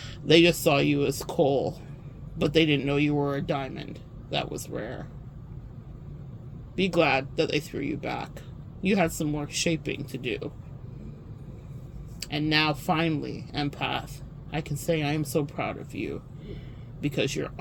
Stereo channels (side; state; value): both; identical; correlation 1.00